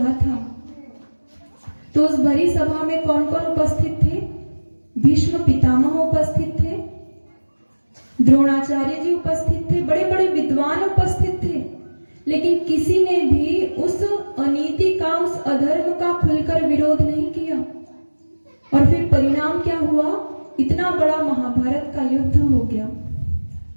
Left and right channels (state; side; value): inverted; both; correlation -1.00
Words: था, तो उस भरी सभा में कौन कौन उपस्थित थे? भीष्म पितामह उपस्थित थे, द्रोणाचार्य जी उपस्थित थे, बड़े बड़े विद्वान उपस्थित थे, लेकिन किसी ने भी उस अनीति का, उस अधर्म का खुलकर विरोध नहीं किया। और फिर परिणाम क्या हुआ? इतना बड़ा महाभारत का युद्ध हो गया।